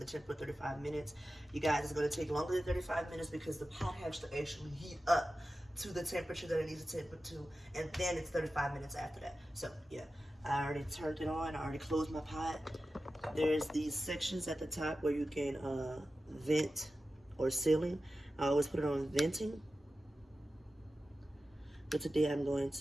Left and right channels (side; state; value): both; normal; correlation 0.93